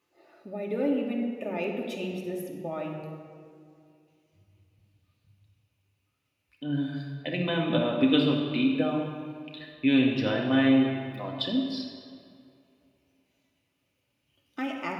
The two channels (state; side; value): identical; both; correlation 1.00